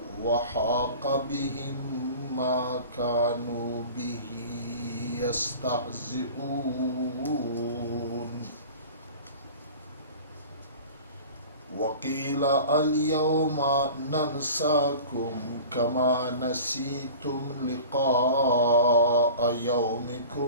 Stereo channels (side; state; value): both; inverted; correlation -0.40